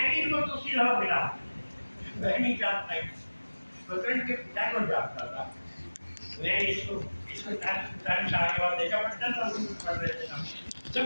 भी इनको दूसरी तरह मिला, मैं नहीं जानता, स्वतंत्र के पिता को जानता था, मैं इसको 40 साल के बाद देखा पड़ता था, पढ़ रहे थे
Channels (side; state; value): both; inverted; correlation -1.00